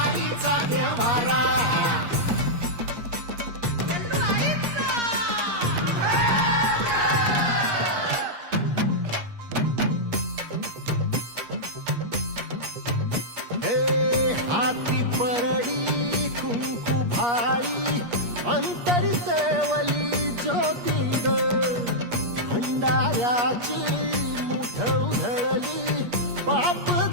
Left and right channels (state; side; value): late; left; 8.4 ms